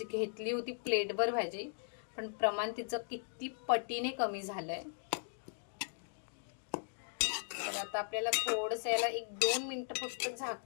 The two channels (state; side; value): silent; right; digital silence